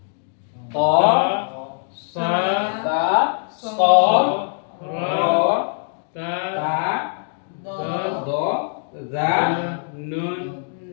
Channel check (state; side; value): silent; right; digital silence